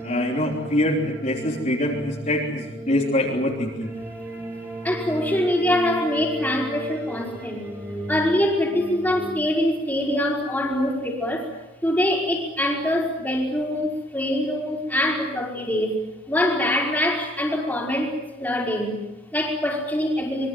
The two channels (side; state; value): both; normal; correlation 0.64